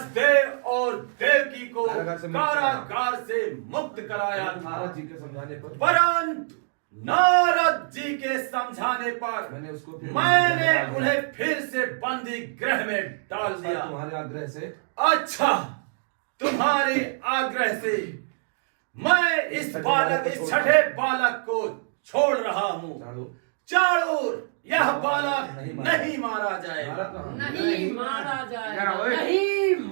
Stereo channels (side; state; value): left; silent; digital silence